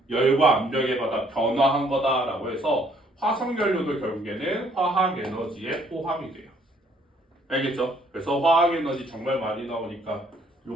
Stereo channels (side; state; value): both; normal; correlation 0.64